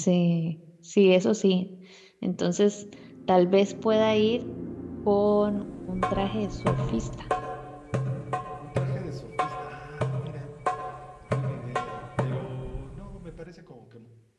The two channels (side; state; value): both; identical; correlation 1.00